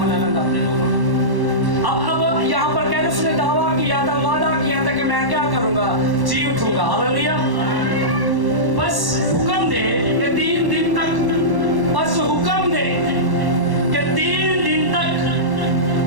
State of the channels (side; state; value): left; late; 1.1 ms